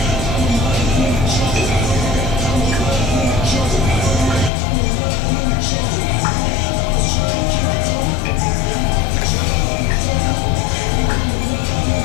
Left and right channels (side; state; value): right; drops out; at 4.5 s